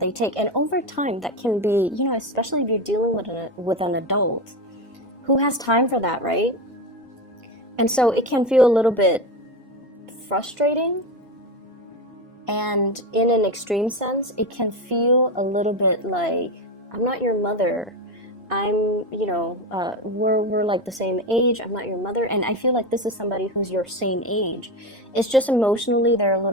take. And over time, that can be, you know, especially if you're dealing with an adult, who has time for that, right? And so it can feel a little bit frustrating, and in an extreme sense, it can feel a little bit like, I'm not your mother. I'm, you know, we're like the same age. I'm not your mother. And I feel like this is somebody who's your same age. It's just emotionally they're a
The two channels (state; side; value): normal; both; correlation 0.18